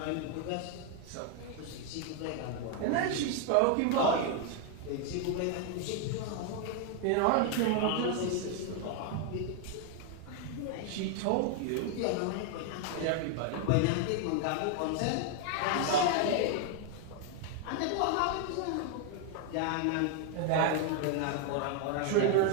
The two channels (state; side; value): different; both; correlation 0.01